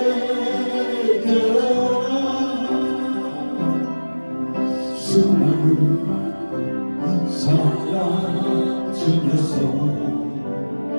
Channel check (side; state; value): both; inverted; correlation -1.00